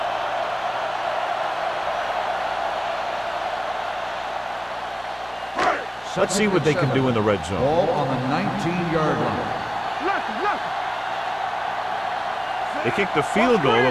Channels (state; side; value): identical; both; correlation 1.00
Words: Let's see what they can do in the red zone. Ball on the 19-yard line. They kicked the field goal the